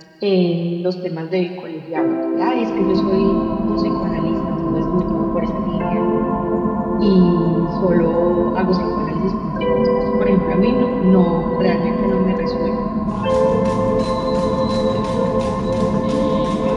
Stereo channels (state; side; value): identical; both; correlation 1.00